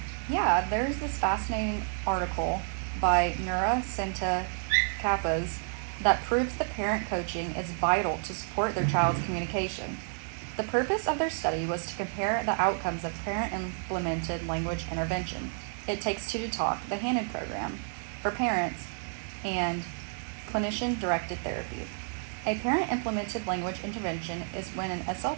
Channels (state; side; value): silent; left; 58 dB below the other